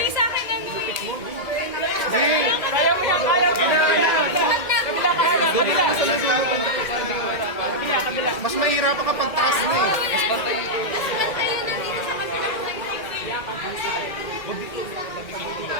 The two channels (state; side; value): late; right; 2.1 ms